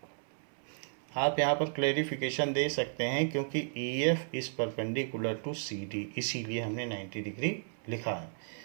आप यहाँ पर क्लेरिफिकेशन दे सकते हैं क्योंकि E F is perpendicular to C D, इसीलिए हमने 90 डिग्री लिखा है।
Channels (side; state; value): left; silent; 55 dB below the other